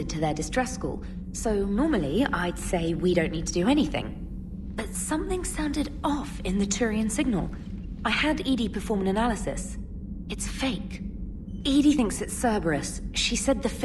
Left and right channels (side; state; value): both; identical; correlation 1.00